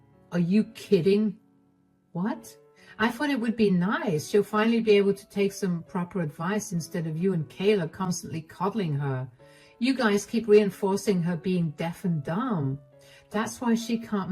Are you kidding? What? I thought it would be nice. She'll finally be able to take some proper advice instead of you and Kayla constantly coddling her. You guys keep reinforcing her being deaf and dumb. That's why she can't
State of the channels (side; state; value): both; identical; correlation 1.00